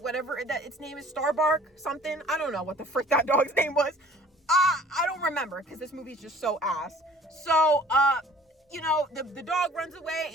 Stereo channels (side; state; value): both; normal; correlation 0.51